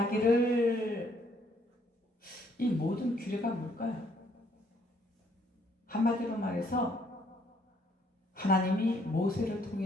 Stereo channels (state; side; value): normal; both; correlation 0.67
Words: 이 모든 규례가 뭘까요? 한마디로 말해서 하나님이 모세를